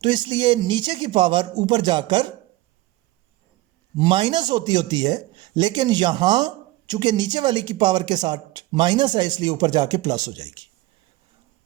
तो इसलिए नीचे की पावर ऊपर जाकर माइनस होती है, लेकिन यहां चूंकि नीचे वाली की पावर के साथ माइनस है इसलिए ऊपर जाके प्लस हो जाएगी।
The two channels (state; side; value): quieter; left; 18.4 dB